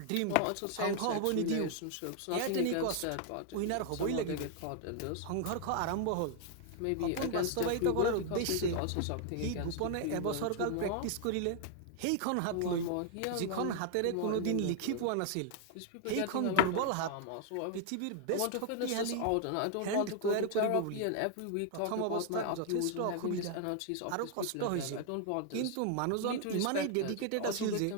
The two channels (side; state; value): both; different; correlation 0.00